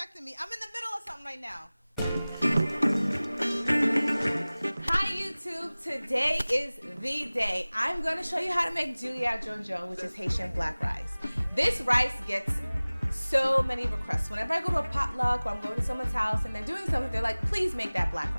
me. I'm in the middle of something right now. Hi YouTube, today is the day. I'm going to show you how to make Djon-djon, which is Haitian black rice. This rice gets so many requests. Whenever I go to a potluck or I'm going to someone's house and they're doing something, they're like, please make that black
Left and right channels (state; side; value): inverted; both; correlation -0.99